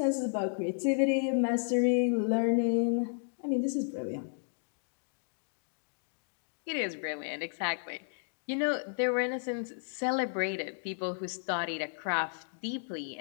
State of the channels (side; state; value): right; silent; digital silence